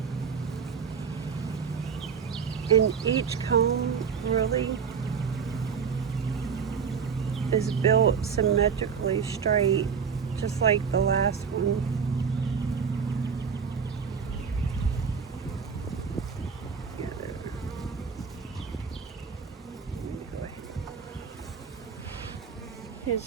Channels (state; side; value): quieter; left; 6.4 dB